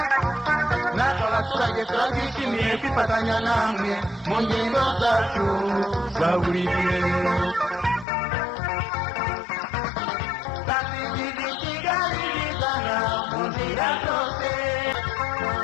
natwe abaturage turabyishimiye kwifatanya namwe mu ngendo zacu za buri gihe twasigije Kigali bizana mu nzira zose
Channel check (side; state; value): right; drops out; at 8.1 s